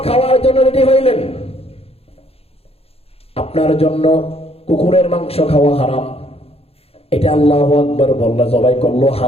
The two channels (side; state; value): right; late; 0.29 ms